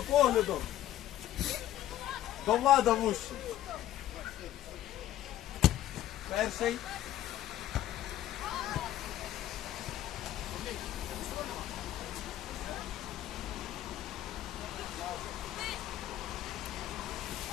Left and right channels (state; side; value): quieter; right; 13.0 dB